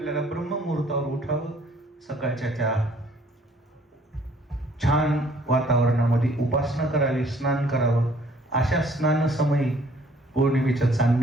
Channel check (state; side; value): normal; both; correlation 0.60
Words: ब्रह्ममुहूर्तावर उठावं, सकाळच्या त्या छान वातावरणामध्ये उपासना करावी, स्नान करावं. अशा स्नान समयी पौर्णिमेचं